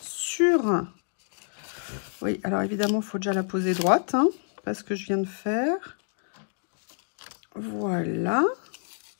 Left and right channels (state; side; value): silent; right; 59 dB below the other